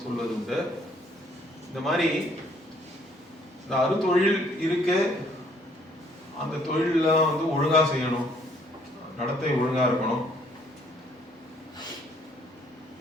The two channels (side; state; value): both; normal; correlation 0.63